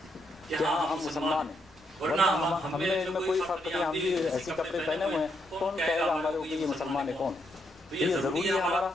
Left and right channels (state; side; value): normal; both; correlation 0.78